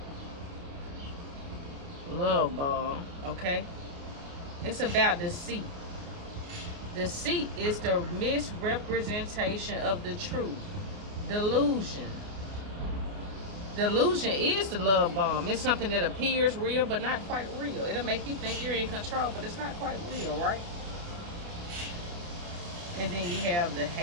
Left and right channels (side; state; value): left; late; 29 ms